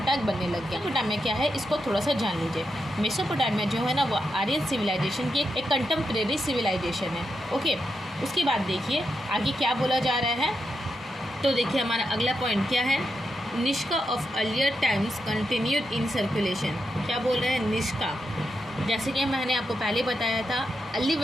बनने लग गया। मेसोपोटामिया क्या है इसको थोड़ा सा जान लीजिए। मेसोपोटामिया जो है ना वो आर्यन सिविलाइजेशन की एक कंटेम्प्रेरी सिविलाइजेशन है। ओके, उसके बाद देखिए आगे क्या बोला जा रहा है। तो देखिए हमारा अगला पॉइंट क्या है, Nishka of earlier times continued in circulation. क्या बोल रहे हैं, निष्का। जैसे कि मैंने आपको पहले बताया था, अर्ली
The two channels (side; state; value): both; normal; correlation 0.85